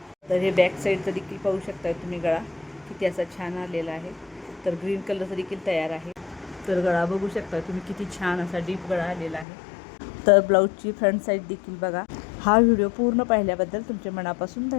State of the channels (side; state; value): right; drops out; at 9.5 s